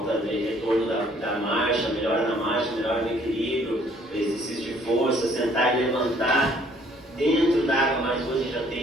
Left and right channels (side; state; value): both; normal; correlation 0.61